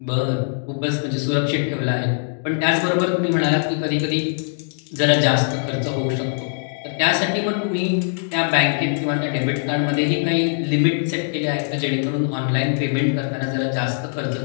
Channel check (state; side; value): silent; right; digital silence